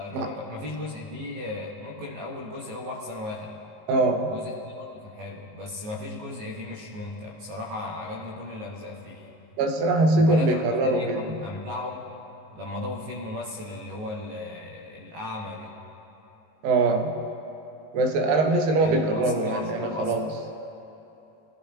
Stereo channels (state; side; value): late; left; 19 ms